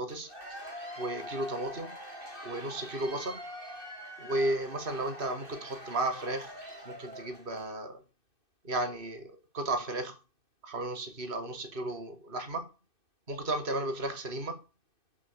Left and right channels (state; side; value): late; left; 2.6 ms